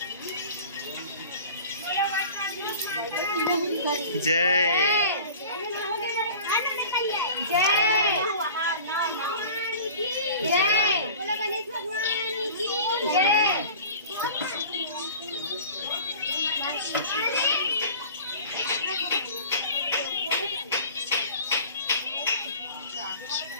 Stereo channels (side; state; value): both; inverted; correlation -0.41